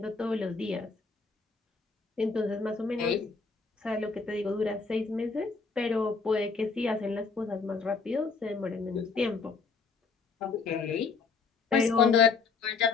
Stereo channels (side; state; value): right; quieter; 4.8 dB